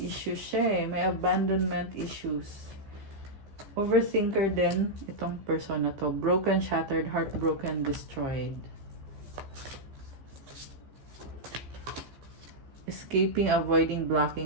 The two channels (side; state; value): left; late; 14 ms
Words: siya eh. May abandonment issues. Overthinker din itong person na to. Broken, shattered, heartbroken, destroyed. Escaping, avoiding,